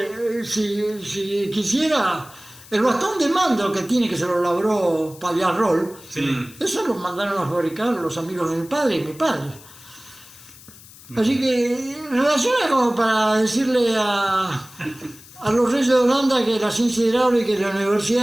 si quisiera, el bastón de mando que tiene, que se lo labró Pallarrol, eso lo mandaron a fabricar los amigos de mi padre y mi padre. Así que relaciona como para decirle a los reyes de Holanda que la ciencia hidráulica y la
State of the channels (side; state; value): left; noise; hiss, 21 dB below the sound